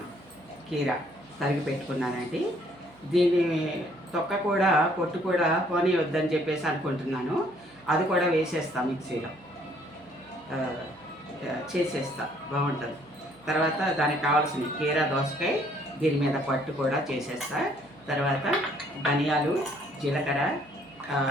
కీరా తరిగి పెట్టుకున్నానండి. దీని తొక్క కూడా పొట్టు కూడా పోనీ వద్దని చెప్పేసి అనుకుంటున్నాను. అది కూడా వేసేస్తాను, మిక్సీలో చేసేస్తా, బాగుంటుంది. తర్వాత దానికి కావాల్సిన కీరా దోసకాయ, దీని మీద పట్టు కూడా చేసేస్తా. తర్వాత ధనియాలు, జీలకర్ర,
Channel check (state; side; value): noise; right; hum, 27 dB below the sound